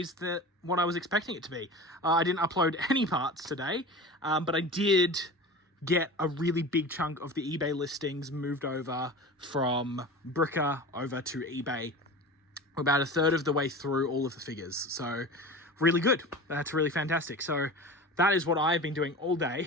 than what I was expecting it to be. I didn't upload any parts today, but I did get a really big chunk of the eBay listings moved over from Bricker over to eBay. We're about a third of the way through all of the figures. So really good. That's really fantastic. So that is what I've been doing all day.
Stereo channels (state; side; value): normal; both; correlation 0.33